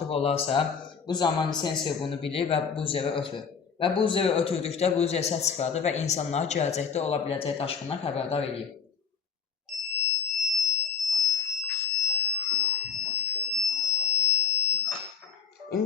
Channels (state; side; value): quieter; right; 6.3 dB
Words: olarsa, bu zaman sensor bunu bilir və buzeri ötürür. Və buzeri ötürdükdə buzer səs çıxardır və insanları gələcəkdə ola biləcək daşqından xəbərdar edir.